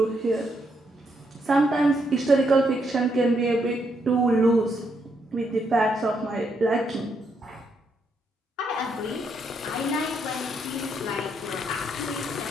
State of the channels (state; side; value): normal; both; correlation 0.77